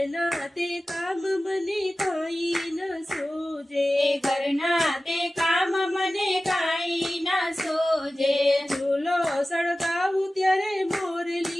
તે કામ મને કાંઈ ન સૂજે, ઘરના તે કામ મને કાંઈ ના સૂજે. ચૂલો સળગાવું ત્યારે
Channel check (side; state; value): both; normal; correlation 0.96